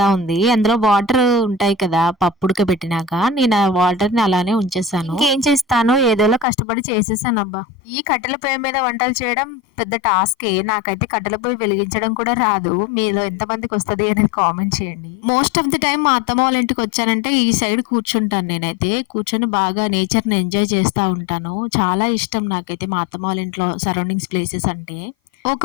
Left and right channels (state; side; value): drops out; right; at 6.5 s